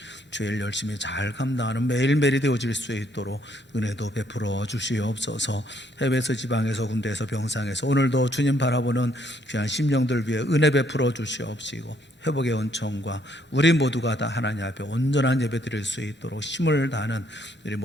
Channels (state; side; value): normal; both; correlation 0.69